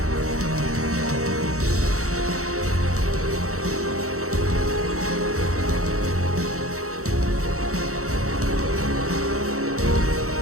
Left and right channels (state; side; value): late; left; 0.64 ms